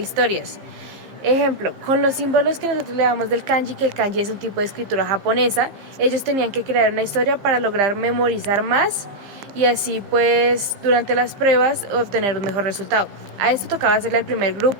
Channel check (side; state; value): left; late; 15 ms